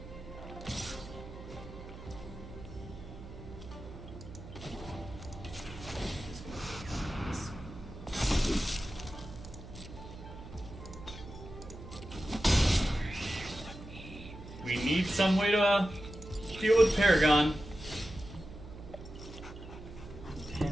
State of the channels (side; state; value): right; noise; hum, 13 dB below the sound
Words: We need some way to deal with Paragon.